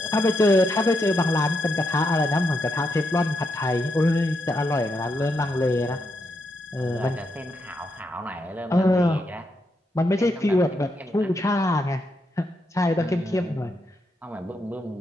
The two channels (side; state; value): both; normal; correlation 0.82